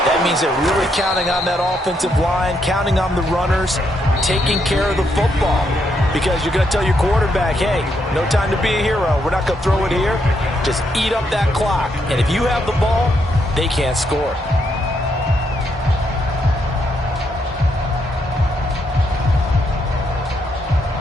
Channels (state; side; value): normal; both; correlation 0.77